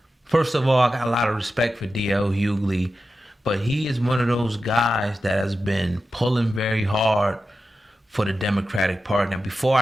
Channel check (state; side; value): normal; both; correlation 0.92